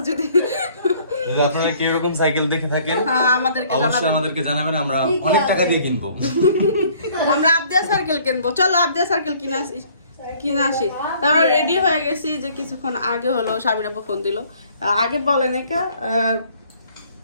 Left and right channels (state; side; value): inverted; both; correlation -0.58